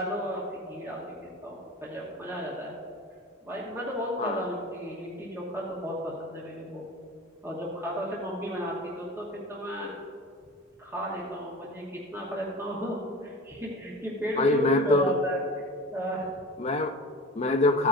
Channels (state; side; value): normal; both; correlation 0.36